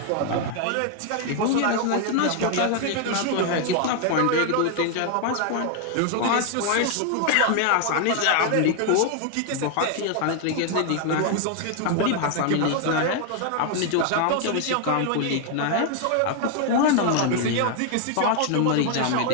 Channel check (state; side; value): different; both; correlation 0.00